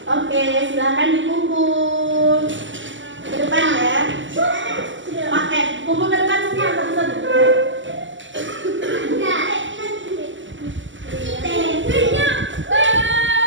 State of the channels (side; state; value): left; late; 0.55 ms